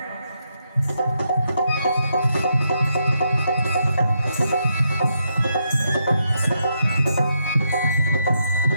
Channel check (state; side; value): inverted; both; correlation -0.80